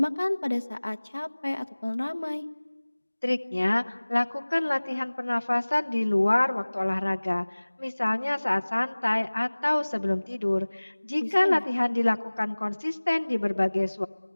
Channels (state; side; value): inverted; both; correlation -1.00